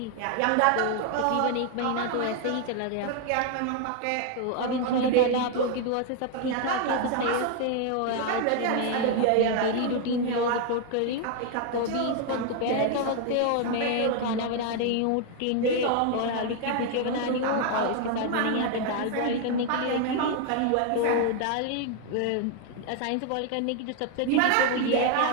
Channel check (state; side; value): different; both; correlation 0.00